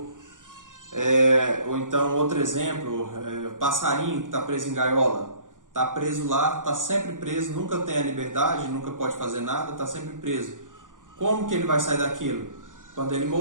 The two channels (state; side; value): late; left; 0.88 ms